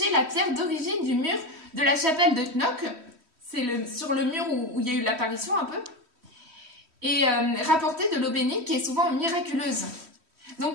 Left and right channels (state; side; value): late; left; 3.1 ms